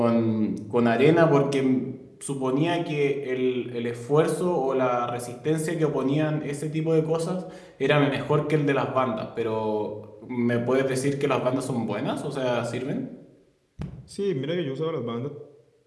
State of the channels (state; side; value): identical; both; correlation 1.00